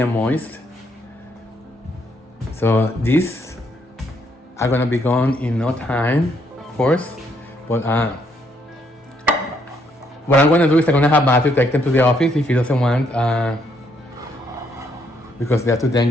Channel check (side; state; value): both; normal; correlation 0.72